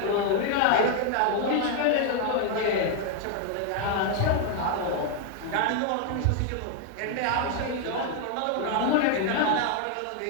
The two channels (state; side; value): different; both; correlation 0.00